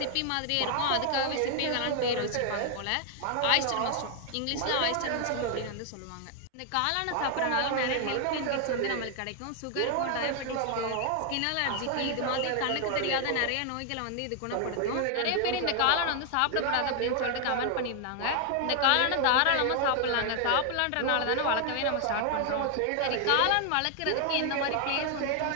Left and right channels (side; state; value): both; different; correlation 0.00